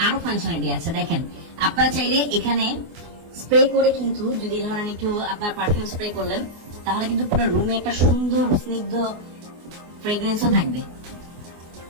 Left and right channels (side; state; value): left; late; 24 ms